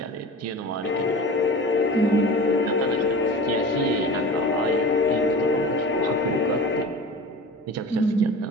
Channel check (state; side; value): normal; both; correlation 0.34